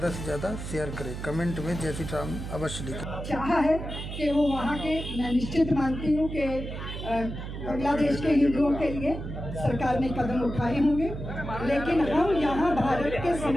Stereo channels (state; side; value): noise; right; hum, 7 dB below the sound